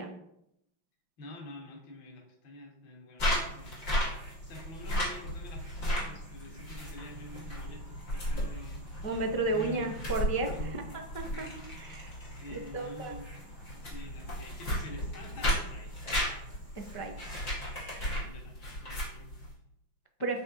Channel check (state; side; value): late; right; 5.6 ms